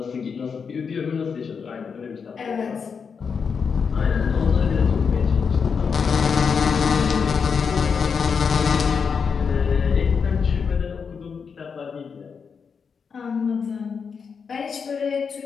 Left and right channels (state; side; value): quieter; right; 6.0 dB